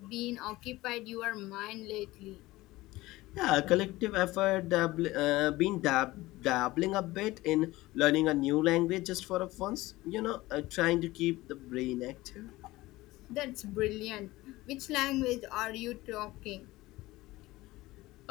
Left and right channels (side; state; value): right; quieter; 18.8 dB